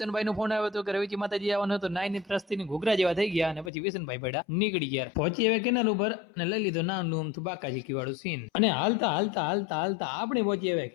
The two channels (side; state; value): right; drops out; at 3.7 s